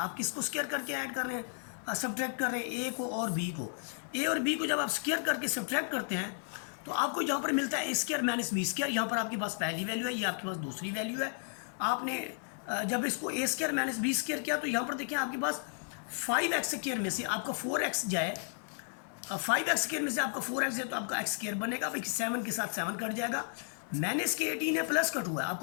किसको स्क्वायर करके ऐड कर रहे हैं, सब्ट्रैक्ट कर रहे हैं a को और b को। a और b को जब आप स्क्वायर करके सब्ट्रैक्ट करते हैं तो आपको यहाँ पर मिलता है a square minus b square. यहाँ पर आपके पास पहली वैल्यू है, ये आपके पास दूसरी वैल्यू है। आपने जब इसको a square minus b square किया तो यहाँ पर देखिए आपके पास 5x स्क्वायर में से आपका 4x जाए, 5x स्क्वायर में से आपका 4x जाए तो आपका x स्क्वायर बनेगा। भाई 7 के साथ 7 कट जाएगा, माइनस के 18 है, प्लस का 2 है,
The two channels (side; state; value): right; silent; 55 dB below the other